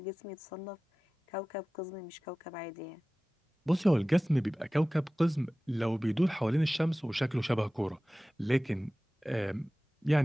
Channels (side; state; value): both; normal; correlation 0.97